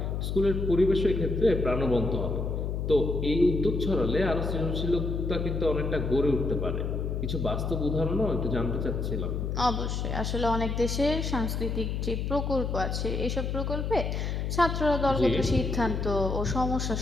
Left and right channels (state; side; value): noise; left; hum, 1 dB below the sound